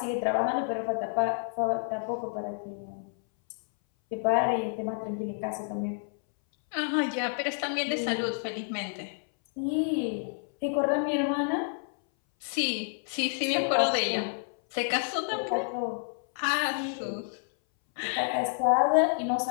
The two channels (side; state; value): right; silent; 58 dB below the other